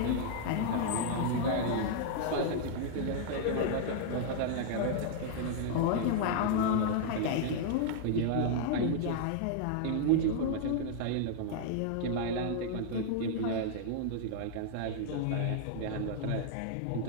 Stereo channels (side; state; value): both; different; correlation -0.01